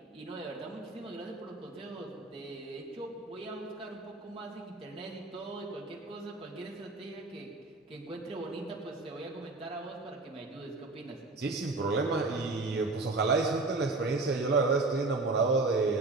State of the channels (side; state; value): left; quieter; 3.3 dB